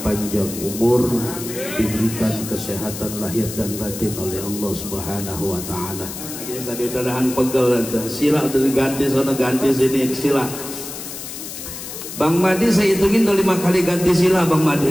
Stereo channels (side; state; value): left; noise; hiss, 10 dB below the sound